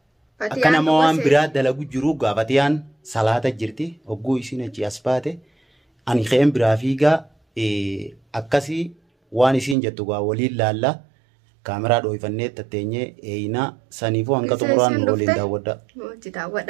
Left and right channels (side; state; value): left; drops out; at 9.8 s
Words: أكنا موان براد دلا قجروقا فتيان صلاة جرتي وقو إسين أجي أسباتي ani kheen biraafiigaa akkasii waan isiin jettu gaa waliin laalla kaameraa dhoofannee tatteenyee eeyinaa saniifuu hanga xumuraan waliin daawwadha. Mooti